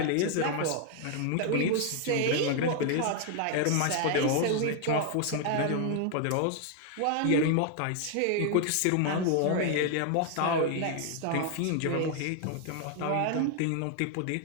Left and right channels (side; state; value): both; different; correlation 0.00